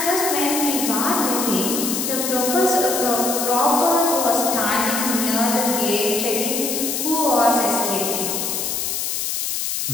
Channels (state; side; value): noise; left; hiss, 1 dB below the sound